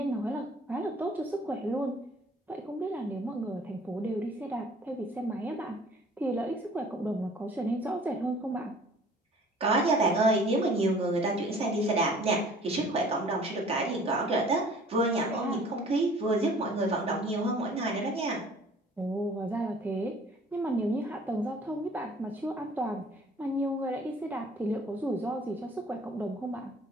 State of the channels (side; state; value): both; normal; correlation 0.51